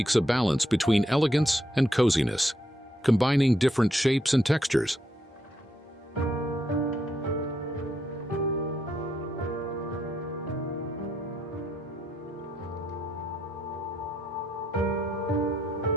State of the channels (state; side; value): normal; both; correlation 0.77